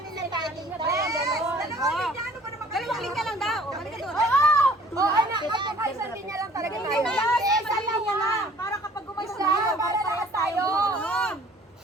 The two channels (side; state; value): both; normal; correlation 0.53